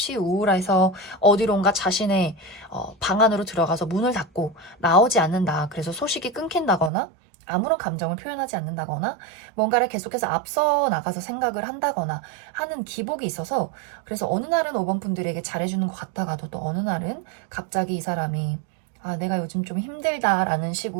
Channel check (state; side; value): drops out; left; at 6.9 s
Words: 우울해서 어디론가 자신의 방 안으로 들어가서 문을 닫고 나오지 않는다. 그래서 소식이 끊긴다거나 아무런 감정을 표현하지 않는다거나 뭔가를 계속해서 앞서 나가서 생각을 한다거나 하는 기복이 있어서 그래서 어느 날은 5번 분들에게 잘해주는 것 같다가도 또 어느 날은 갑자기 이 사람이 내가 요즘 좀 힘들다라는